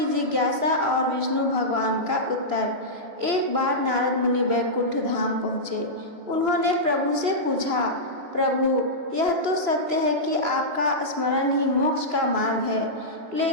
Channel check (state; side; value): late; left; 3.0 ms